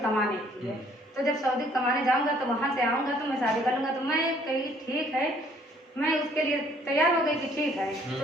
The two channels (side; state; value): both; normal; correlation 0.61